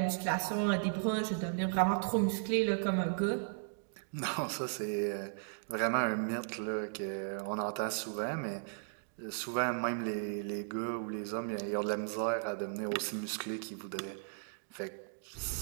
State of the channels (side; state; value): left; silent; digital silence